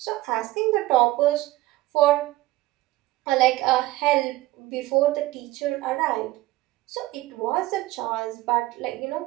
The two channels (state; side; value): quieter; left; 17.6 dB